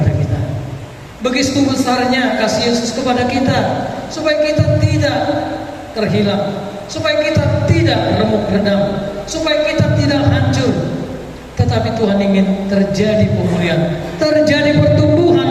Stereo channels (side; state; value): both; identical; correlation 1.00